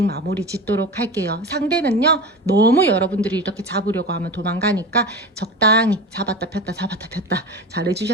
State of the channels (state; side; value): normal; both; correlation 0.29